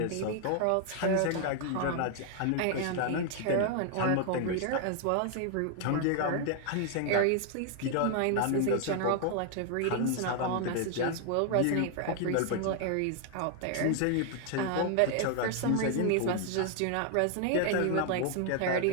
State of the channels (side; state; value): both; different; correlation 0.00